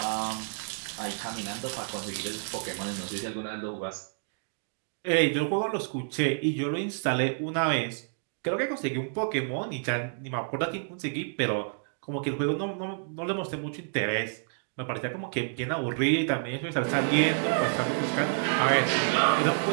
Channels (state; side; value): silent; left; digital silence